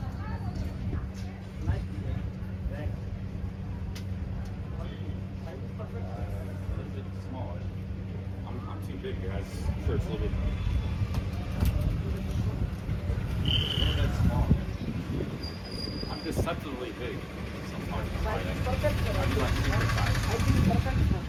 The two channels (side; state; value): both; identical; correlation 1.00